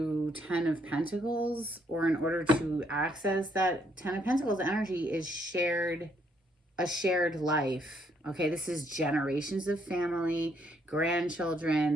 10 of Pentacles, or in order to access that 10 of Pentacles energy is a shared life. Okay, this is generations of family,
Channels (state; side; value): normal; both; correlation 0.71